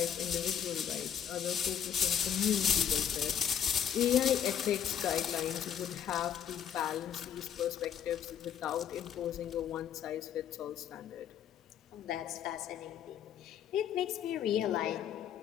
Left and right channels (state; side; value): quieter; right; 9.0 dB